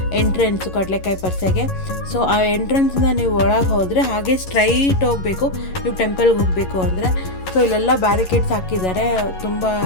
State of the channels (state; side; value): late; right; 11 ms